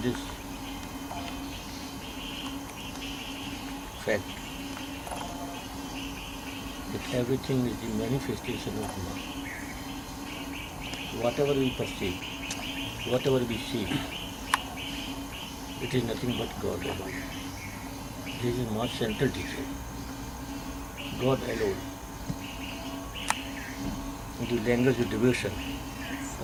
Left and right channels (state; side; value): identical; both; correlation 1.00